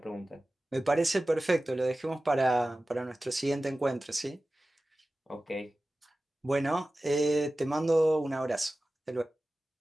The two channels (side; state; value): both; normal; correlation 0.96